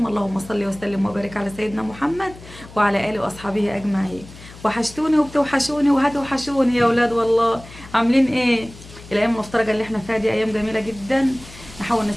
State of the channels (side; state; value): left; noise; hum, 18 dB below the sound